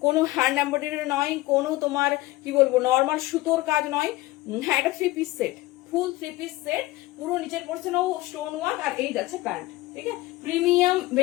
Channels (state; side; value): quieter; right; 18.9 dB